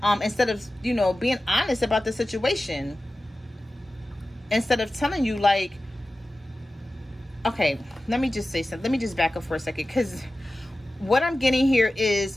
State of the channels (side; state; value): both; normal; correlation 0.95